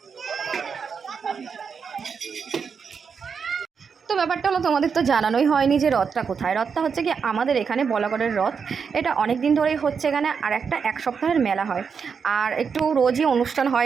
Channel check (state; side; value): quieter; left; 6.1 dB